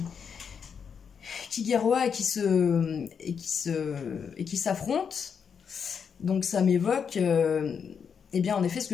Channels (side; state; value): right; quieter; 6.7 dB